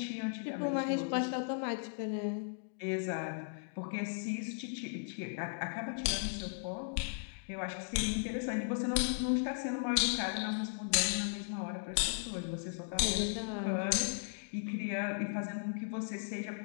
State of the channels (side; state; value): right; silent; digital silence